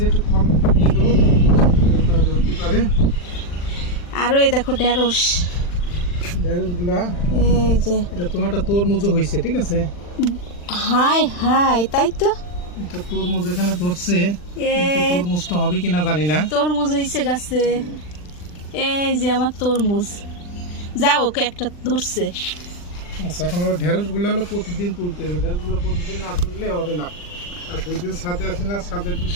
আরো এই দেখো ঢেঁড়স। এই যে এটা তোমারটা তরমুজও হয়েছে, ঠিক আছে। হাই হাই, তাই তো এটা তরমুজ এখানে ধরছে, তরমুজটা হবে কিনা জানি না। তরমুজ হয়েছে গাছে। এই যে আমার তরমুজ, যাও একটা ধরছে। আচ্ছা, এখন ঢেঁড়স গুলো হলো প্রতিদিন তুলতে হবে। ঢেঁড়স গুলো প্রতিদিন না তুললে হবে না। আর দুই দিন ছাদে আসি না, ছাদের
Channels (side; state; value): right; late; 40 ms